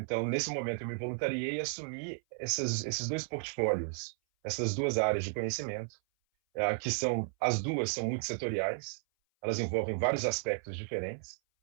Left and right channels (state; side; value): silent; left; 55 dB below the other